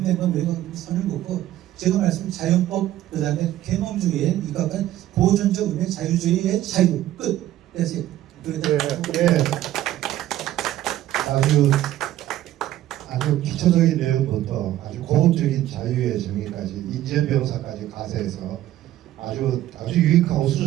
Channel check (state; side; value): quieter; left; 13.7 dB